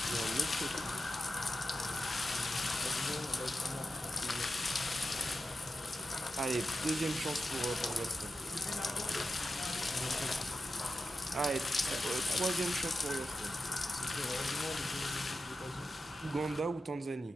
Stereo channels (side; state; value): both; normal; correlation 0.91